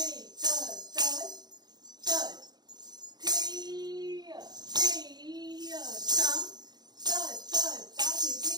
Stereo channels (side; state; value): left; late; 0.20 ms